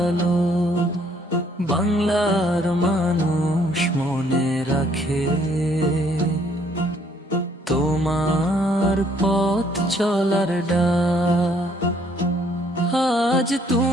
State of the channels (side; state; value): both; normal; correlation 0.65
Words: বাংলার মানুষ মনে রাখে তোমার পথ চলার ডাক। আজ